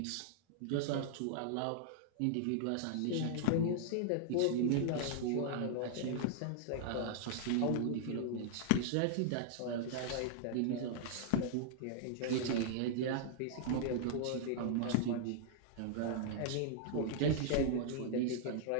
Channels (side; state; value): both; different; correlation -0.01